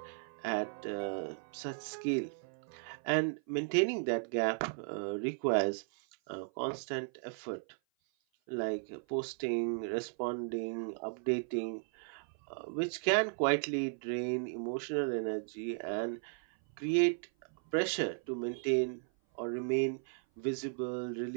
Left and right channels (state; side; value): silent; left; 54 dB below the other